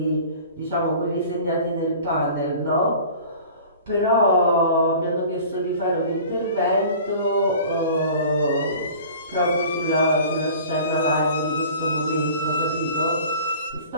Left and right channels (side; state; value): both; inverted; correlation -0.44